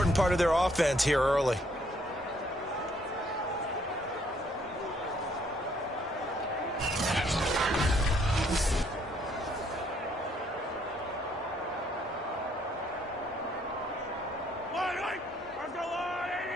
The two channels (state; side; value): normal; both; correlation 0.67